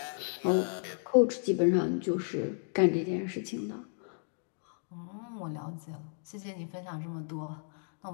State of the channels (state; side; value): silent; right; digital silence